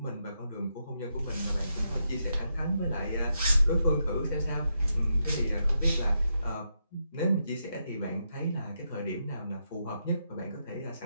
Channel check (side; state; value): both; inverted; correlation -0.82